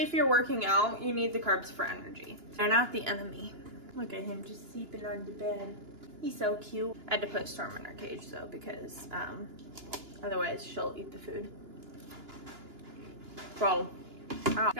if you're working out, you need the carbs for energy. They're not the enemy. Look at him just sleeping on the bed. He's so cute. I had to put Storm in her cage though, because otherwise she'll eat the food. Bro, I'm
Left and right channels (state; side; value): late; left; 2.9 ms